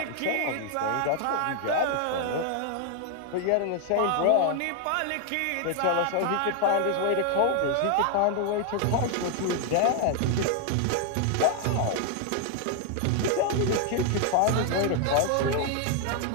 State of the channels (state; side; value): different; both; correlation 0.00